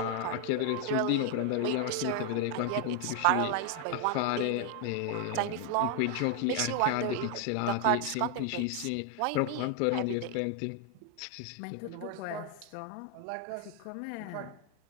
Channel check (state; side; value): different; both; correlation 0.00